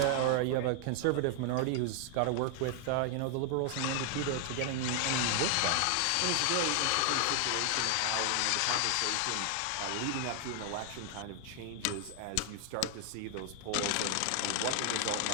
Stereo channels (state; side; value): different; both; correlation 0.00